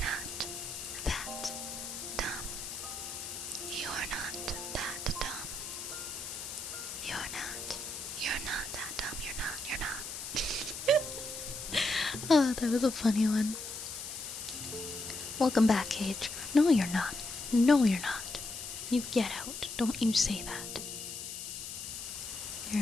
not that dumb. You're not that dumb. You're not. You're not that dumb. You're not. You're not. Oh, that was a funny one. Welcome back, Cage. No, you're not. No, you're not. You get out. Don't you say that.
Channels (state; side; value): noise; left; hiss, 7 dB below the sound